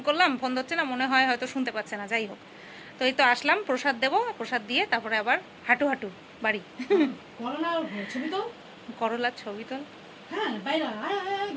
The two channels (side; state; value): both; identical; correlation 1.00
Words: করলাম, ফোন ধরছে না, মনে হয় হয়তো শুনতে পাচ্ছে না। যাই হোক, তো এই তো আসলাম, প্রসাদ দেবো, প্রসাদ দিয়ে তারপরে আবার হাঁটু হাঁটু বাড়ি। করলার ছবি তোল।